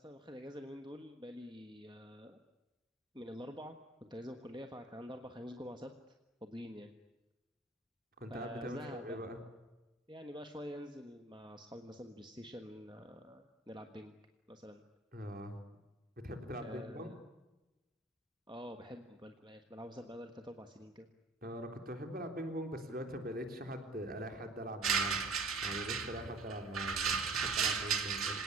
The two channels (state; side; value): quieter; left; 3.3 dB